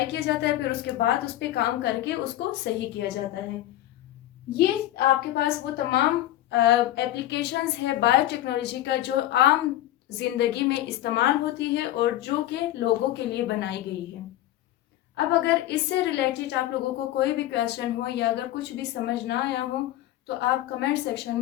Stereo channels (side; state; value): right; quieter; 14.3 dB